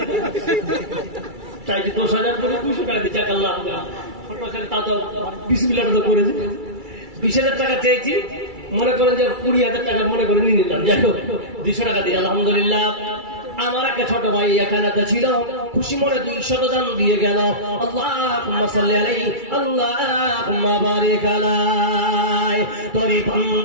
চাই, 10,000 করে 200 টাকা দিচ্ছে। আল্লাহ ছোট ছেলে তা তো বিসমিল্লাহ তো করেছে। 20,000 টাকা চেয়েছি, মনে করেন যে 20,000 টাকা মনে করে নিয়ে নিলাম, যাই হোক 200 টাকা দিয়ে আলহামদুলিল্লাহ। আমার একটা ছোট ভাই এখানে ছিল, খুশি মনে 200 দান দিয়ে গেল। আল্লাহুম্মা সাল্লি আলাইহি আল্লাহুম্মা বারিক আলাইহি। তোরে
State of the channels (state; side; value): late; left; 2.3 ms